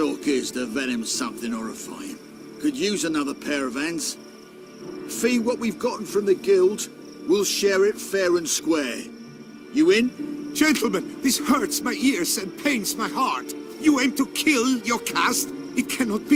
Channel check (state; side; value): identical; both; correlation 1.00